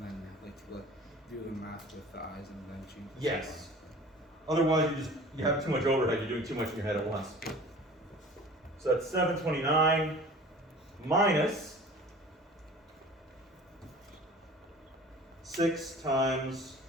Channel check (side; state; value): both; normal; correlation 0.43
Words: then like to do the math with the i's and then change the Yes. sign. Otherwise, you have too much overhead. You're doing too much in your head at once. So that's 729 minus 6 times